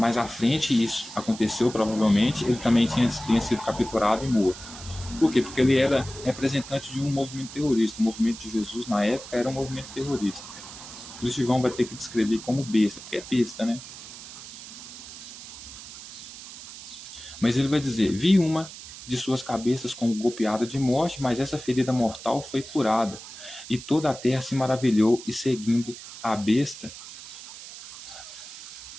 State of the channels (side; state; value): right; noise; hiss, 14 dB below the sound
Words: à frente isso aconteceu, provavelmente, ele também tinha sido capturado e morto. Por quê? Porque ele era representante de um movimento terrorista. O movimento de Jesus, na época, era um movimento terrorista. Por isso João vai ter que descrever como besta, porque é besta, né? Mas ele vai dizer: vi uma de suas cabeças como golpeada de morte, mas essa ferida mortal foi curada. E toda a terra se maravilhou, e seguindo a besta,